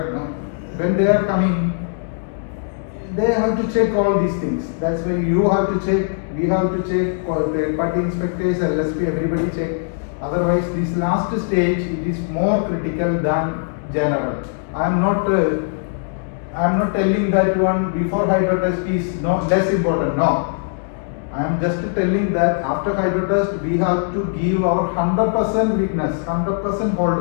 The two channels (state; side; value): silent; right; digital silence